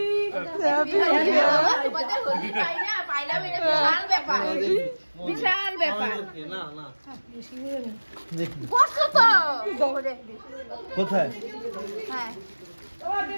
বিশাল ব্যাপার। না না বসো তো কোথায়? হ্যাঁ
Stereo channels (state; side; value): inverted; both; correlation -1.00